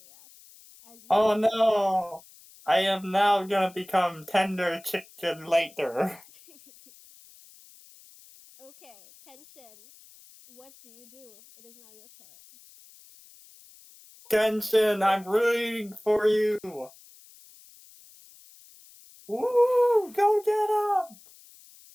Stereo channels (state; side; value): noise; left; hiss, 24 dB below the sound